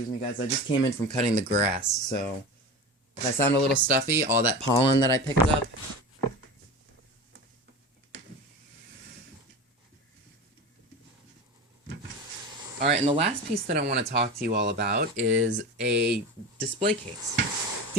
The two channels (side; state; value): both; normal; correlation 0.29